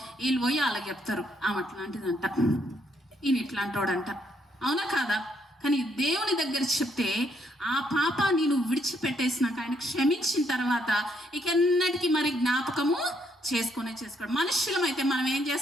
వీళ్ళు పోయి వాళ్ళకి చెప్తారు, ఆమె అట్లాంటిదంట, ఈయన ఇట్లాంటోడంట. అవునా కాదా? కానీ దేవుని దగ్గర చెప్తే ఆ పాపాన్ని నువ్వు విడిచిపెట్టేసినాక ఆయన క్షమించిన తర్వాత ఇక ఎన్నటికీ మరి జ్ఞాపకము చేసుకోడు. మనుషులమైతే మనం ఏం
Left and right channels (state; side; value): normal; both; correlation 0.73